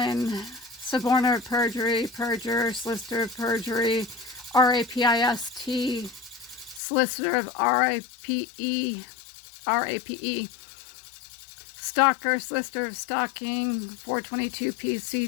suborner of perjury, perjuror, solicitor of perjury, RAPIST, solicitor of RAPE, stalker, solicitor of stalking, 422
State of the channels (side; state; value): right; drops out; at 6.8 s